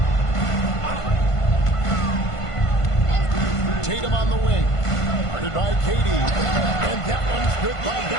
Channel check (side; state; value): right; late; 1.5 ms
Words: Tatum on the wing. Guarded by KD. And that one's good by